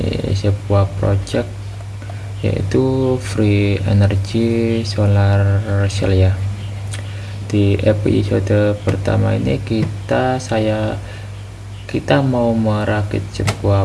sebuah project, yaitu free energy solar cell ya. Di episode pertama ini kita mau merakit sebuah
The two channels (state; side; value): identical; both; correlation 1.00